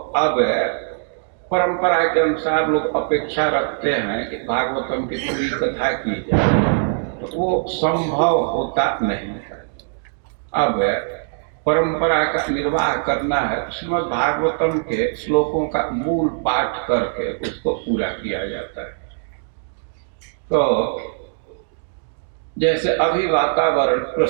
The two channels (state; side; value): silent; left; digital silence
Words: परंपरा के अनुसार लोग अपेक्षा रखते हैं कि भागवतम की पूरी कथा की जाए, तो वो संभव होता नहीं है। अब परंपरा का निर्वाह करना है, श्रीमद् भागवतम के श्लोकों का मूल पाठ करके उसको पूरा किया जाता है। तो जैसे अभी वातावरण